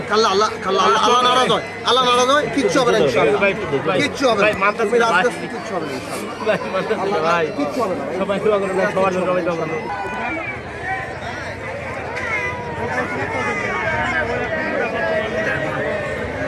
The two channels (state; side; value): identical; both; correlation 1.00